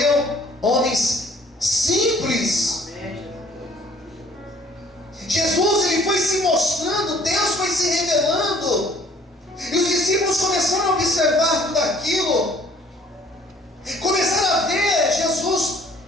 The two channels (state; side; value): normal; both; correlation 0.56